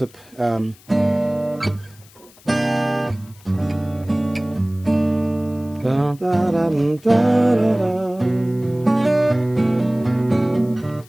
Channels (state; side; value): noise; left; hiss, 26 dB below the sound